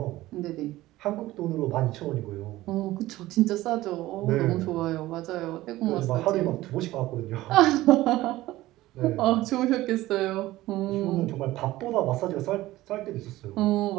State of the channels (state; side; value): quieter; left; 16.9 dB